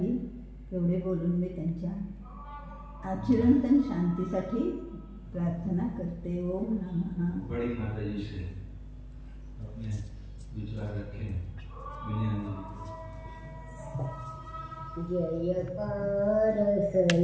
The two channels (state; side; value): identical; both; correlation 1.00